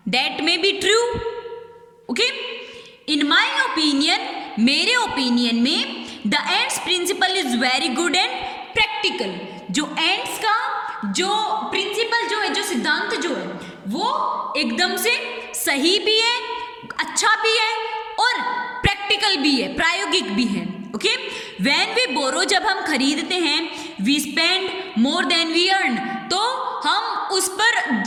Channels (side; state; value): both; identical; correlation 1.00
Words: That may be true. Okay, in my opinion, मेरे ओपिनियन में the ants principle is very good and practical, जो एंड्स का जो प्रिंसिपल जो है, जो सिद्धांत जो है वो एकदम से सही भी है, अच्छा भी है और प्रैक्टिकल भी है, प्रायोगिक भी है। ओके, व्हेन वी बोरो, जब हम खरीदते हैं, we spend more than we earn, तो हम उस पर